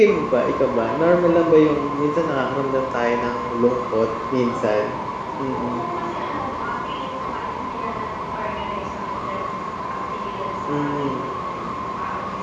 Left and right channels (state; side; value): identical; both; correlation 1.00